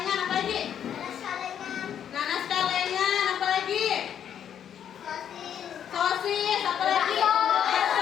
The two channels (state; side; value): quieter; right; 9.2 dB